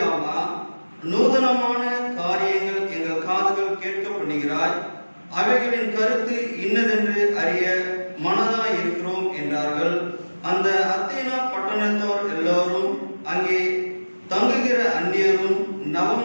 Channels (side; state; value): both; inverted; correlation -1.00